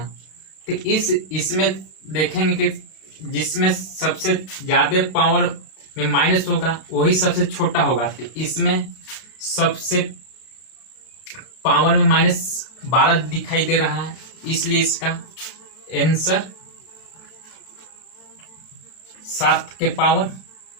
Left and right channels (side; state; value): right; late; 31 ms